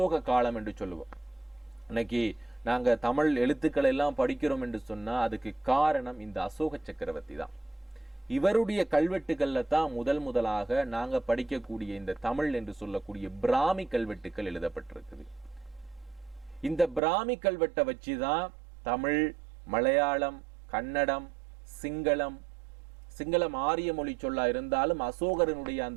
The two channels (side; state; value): left; drops out; at 17.0 s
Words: காலம் என்று சொல்லுவோம். இன்னைக்கு நாங்க தமிழ் எழுத்துக்களை எல்லாம் படிக்கிறோம் என்று சொன்னா அதுக்கு காரணம் இந்த அசோக சக்கரவர்த்தி தான். இவருடைய கல்வெட்டுகள்ல தான் முதலாக நாங்க படிக்கக்கூடிய இந்த தமிழ் என்று சொல்லக்கூடிய பிராமி கல்வெட்டுக்கள் எழுதப்பட்டிருக்குது. இந்த பிராமி கல்வெட்டை வச்சுதான் தமிழ், மலையாளம், கன்னடம், சிங்களம் ஆரிய மொழி சொல்லா இருந்தாலும் அசோகரனுடைய